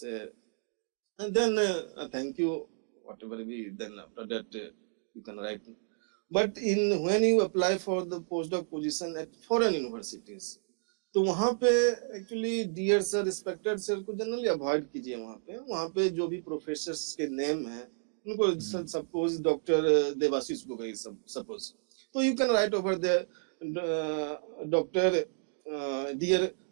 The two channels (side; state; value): left; silent; digital silence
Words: and then thank you, whatever we, then after that you can write. But when you apply for the postdoc position at foreign universities, तो वहाँ पे actually dear sir, respected sir को generally avoid कीजिए. वहाँ पे जो भी professors के नेम है उनको, suppose doctor Debashish Gogoi suppose, तो you can write over there Dr. Dear